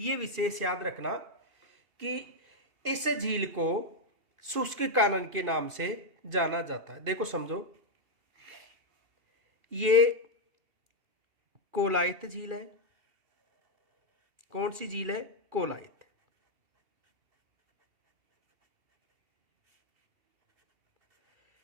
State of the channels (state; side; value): late; left; 2.7 ms